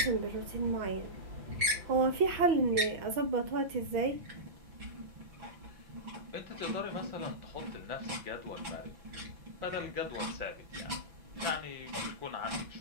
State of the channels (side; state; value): left; late; 6.3 ms